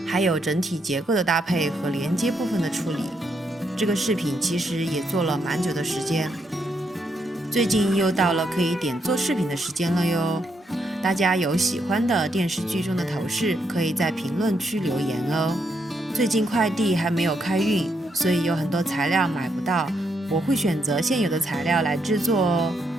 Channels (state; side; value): normal; both; correlation 0.78